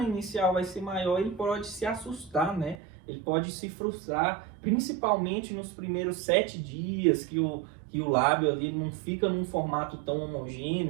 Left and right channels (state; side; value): drops out; left; at 2.8 s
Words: inicial vai ser maior, ele pode se assustar, né? Ele pode se frustrar, principalmente nos primeiros 7 dias que o lábio ali não fica num formato tão